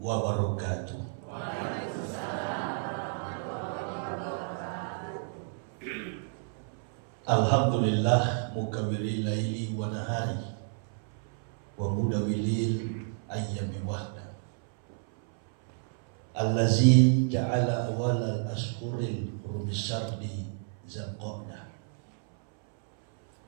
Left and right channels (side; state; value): left; silent; 57 dB below the other